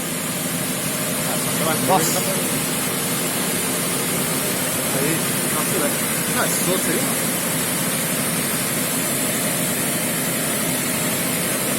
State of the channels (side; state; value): both; identical; correlation 1.00